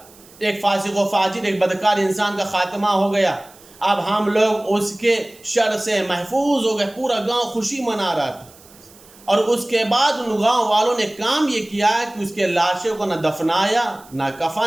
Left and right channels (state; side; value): noise; right; hiss, 24 dB below the sound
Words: ایک فاسق و فاجر ایک بدکار انسان کا خاتمہ ہو گیا، اب ہم لوگ اس کے شر سے محفوظ ہو گئے۔ پورا گاؤں خوشی منا رہا تھا، اور اس کے بعد ان گاؤں والوں نے کام یہ کیا کہ اس کے لاشوں کو نہ دفنایا نہ